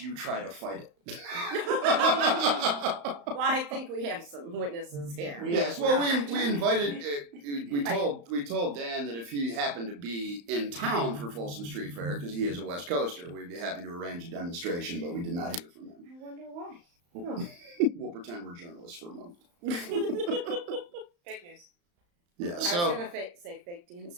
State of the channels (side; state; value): left; late; 35 ms